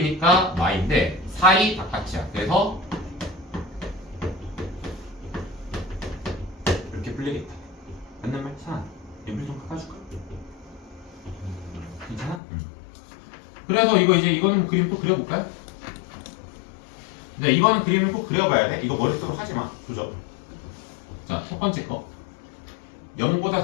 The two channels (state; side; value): drops out; right; at 12.4 s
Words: y인데 사이 바깥이야. 그래서 이렇게 풀리겠다. 맞는 말? 사 연필 좀 깎아줄까? 괜찮아? 그래서 이거는 뭐 그림 또 그려볼까요? 네, 이거는 그림을 꼭 그려봐야 돼. 이거 머릿속으로 하지마. 조져. 자, 첫 번째 거. 0보다